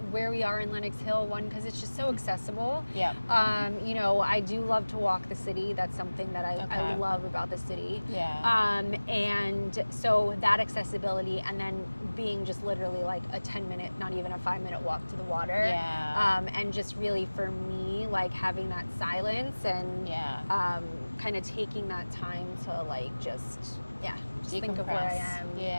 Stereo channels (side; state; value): both; inverted; correlation -1.00